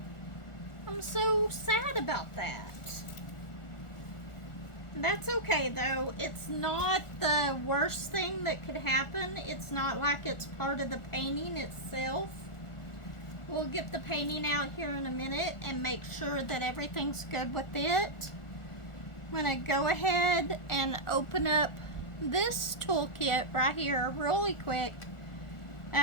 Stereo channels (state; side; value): late; right; 1.4 ms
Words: I'm so sad about that. That's okay though. It's not the worst thing that could happen. It's not like it's part of the painting itself. We'll get the painting out here in a minute and make sure that everything's good with it. I'm going to go ahead and open up this toolkit right here really quick.